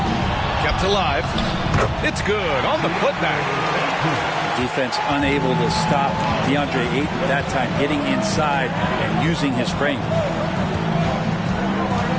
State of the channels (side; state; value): both; identical; correlation 1.00